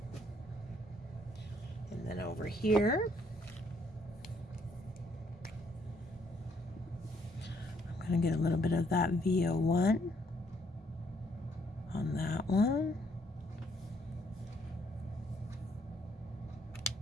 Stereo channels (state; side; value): normal; both; correlation 0.69